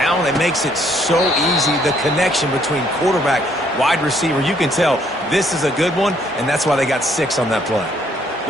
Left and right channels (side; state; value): both; normal; correlation 0.66